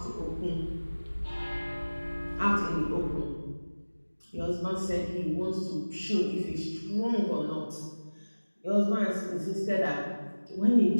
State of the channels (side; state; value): both; inverted; correlation -1.00